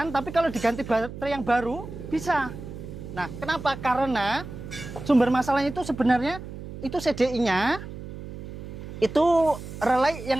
tapi kalau diganti baterai yang baru bisa. Nah, kenapa? Karena sumber masalahnya itu sebenarnya itu CDI-nya itu relay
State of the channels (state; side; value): noise; right; hum, 11 dB below the sound